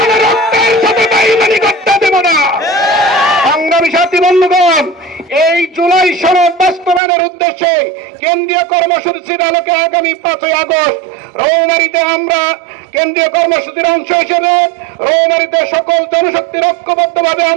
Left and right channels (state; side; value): drops out; left; at 7.0 s